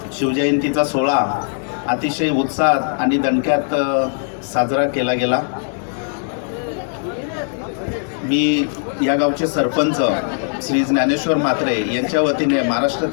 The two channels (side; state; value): right; silent; digital silence